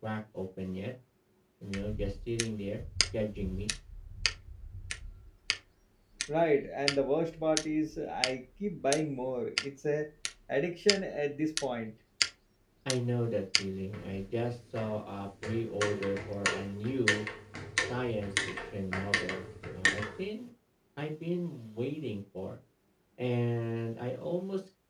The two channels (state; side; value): identical; both; correlation 1.00